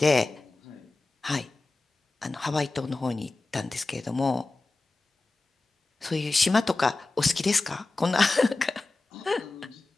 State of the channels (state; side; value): quieter; right; 3.3 dB